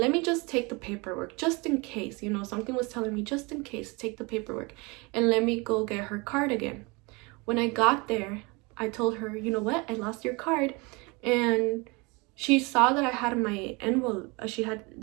me just take the paperwork just in case, something was telling me just in case, take the paperwork and let me go get her card again. When I got there, I told her, you know what, I lost your card. And she saw that I had my envelope,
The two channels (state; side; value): quieter; left; 27.2 dB